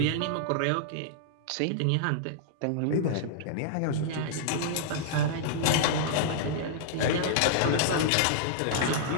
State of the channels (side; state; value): both; different; correlation -0.01